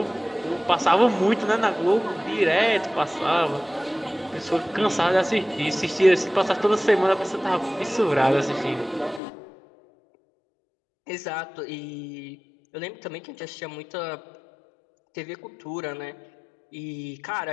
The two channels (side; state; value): right; drops out; at 9.2 s